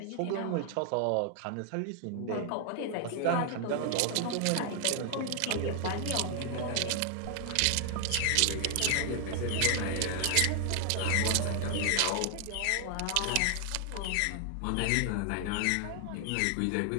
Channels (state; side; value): different; both; correlation 0.00